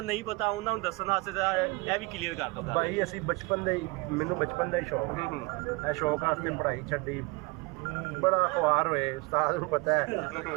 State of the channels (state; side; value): quieter; left; 25.8 dB